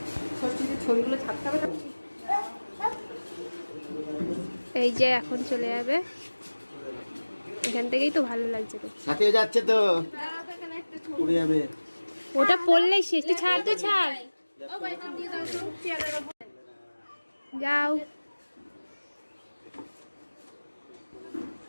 ছবিগুলো ছাড়তে হবে। এই যে এখন চলে যাবে, এখান থেকেই তো ভালো লাগছে। তো সাথে যাচ্ছে তো উড়ে যাবে, ওটা পড়লেই শেষ। তুই ছাড়, তুই ছাড়, যাও।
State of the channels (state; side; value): inverted; both; correlation -1.00